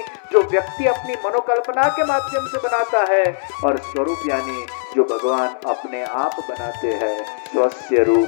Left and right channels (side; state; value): right; silent; digital silence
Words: जो व्यक्ति अपनी मनोकल्पना के माध्यम से बनाता है और स्वरूप यानी जो भगवान अपने आप बनाते हैं। स्वस्य